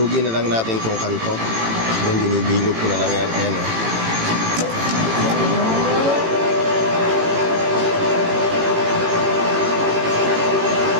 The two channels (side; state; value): left; late; 18 ms